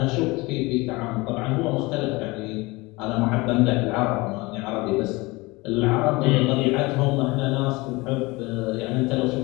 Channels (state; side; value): quieter; right; 23.4 dB